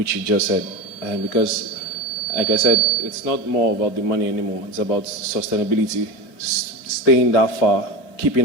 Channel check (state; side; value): late; right; 4.7 ms